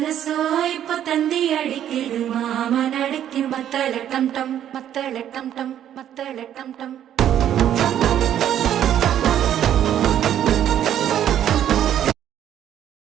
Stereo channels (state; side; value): quieter; left; 10.6 dB